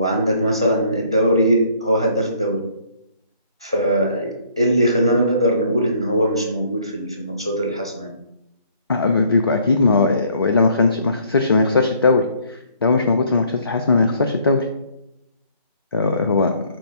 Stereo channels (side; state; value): both; inverted; correlation -0.62